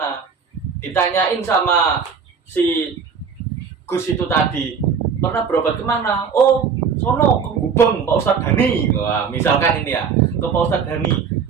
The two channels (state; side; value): quieter; left; 6.2 dB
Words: Ditanyain sama si Gus itu tadi, pernah berobat kemana? Oh, sono ke Gubeng Pak Ustadz Dhani. Wah, misalkan ini ya, ke Pak Ustadz Dhani.